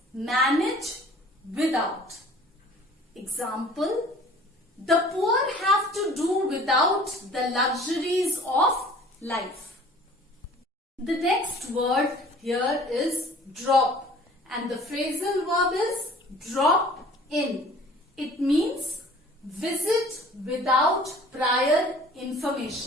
manage without. Example, the poor have to do without the luxuries of life. The next word here is drop, and the phrasal verb is drop in. It means visit without prior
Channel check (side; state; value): both; normal; correlation 0.49